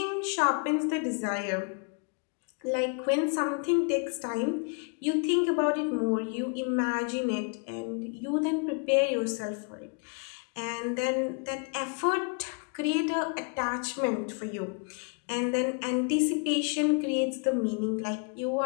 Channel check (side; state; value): right; quieter; 39.3 dB